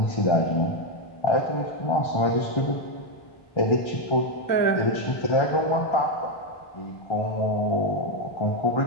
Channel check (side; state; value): right; late; 1.2 ms